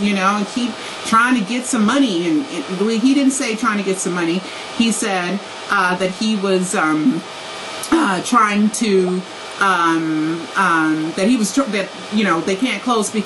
know, and keep trying to get some money. And he didn't say trying to get some money. He said that he was trying to that you know, they can't close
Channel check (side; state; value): both; identical; correlation 1.00